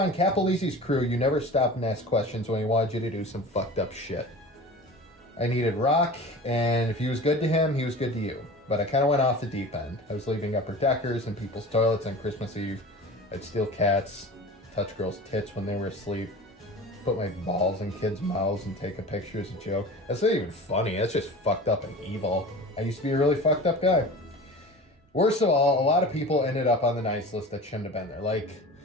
Capelizzi's crew, you never stopped and asked questions when he wanted you to do some fucked up shit. I needed rock, and if he was good to him, he was good to you. But I kind of went off the deep end. I was leaving upper deckers in people's toilets on Christmas Eve. I'd steal cats, touch girls' tits when they were asleep. put my balls in kids' mouths and take a picture as a joke. That's not even funny. That's just fucked up and evil. I used to be a really fucked up guy. Worst of all, a lot of people ended up on the nice list that shouldn't have been there. Like,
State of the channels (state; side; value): normal; both; correlation 0.36